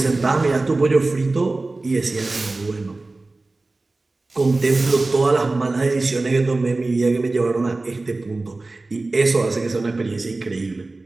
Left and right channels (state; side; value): quieter; left; 3.3 dB